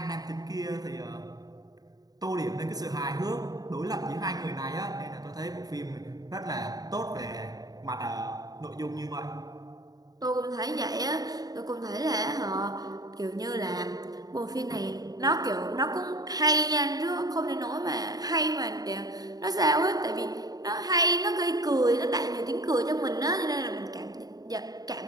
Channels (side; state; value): left; late; 0.18 ms